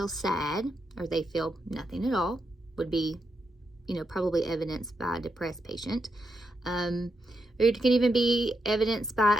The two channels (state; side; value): normal; both; correlation 0.83